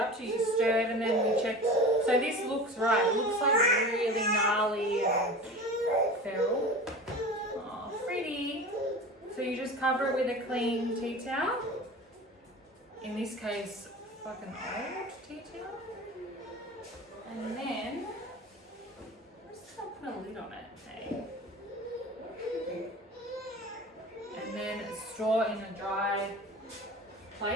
to? You stirred and then we checked. So this looks right. It looks like really gnarly and feral. Oh, pretty. So you just cover it with a clean tea towel. In this case, fucking old tea towel. And then, I'm just gonna put a lid on it, hey? And then store in a dry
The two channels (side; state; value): both; normal; correlation 0.35